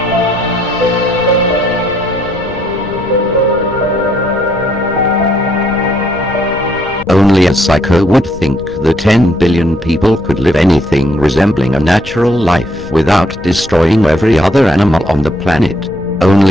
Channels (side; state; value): left; noise; rumble, 17 dB below the sound